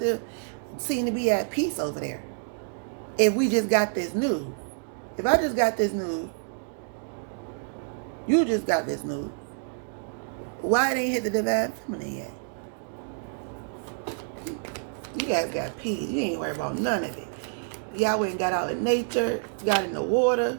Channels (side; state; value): left; silent; digital silence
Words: seem to be at peace over there? If we just got this news. If I just got this news, you just got this news, why they ain't hit the Divine Feminine yet? You guys got peace. You ain't worried about none of it. Y'all went and got out in nature, got in the water.